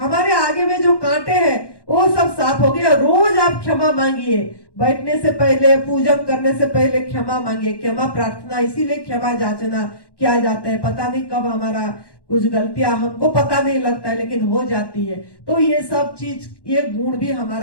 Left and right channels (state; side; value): late; right; 1.1 ms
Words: आगे में जो कांटे हैं वो सब साफ हो गया। रोज आप क्षमा मांगिए, बैठने से पहले, पूजन करने से पहले क्षमा मांगिए। क्षमा प्रार्थना इसीलिए क्षमा याचना किया जाता है, पता नहीं कब हमारा कुछ गलतियां हमको पता नहीं लगता है लेकिन हो जाती है। तो ये सब चीज, ये गुण भी